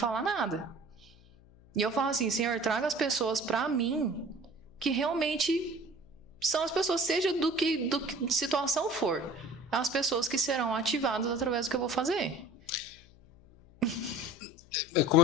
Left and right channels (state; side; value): noise; left; hum, 25 dB below the sound